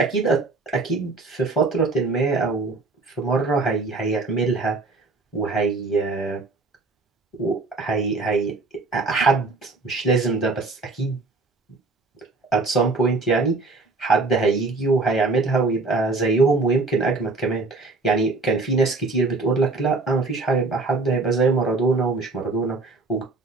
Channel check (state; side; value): quieter; left; 3.5 dB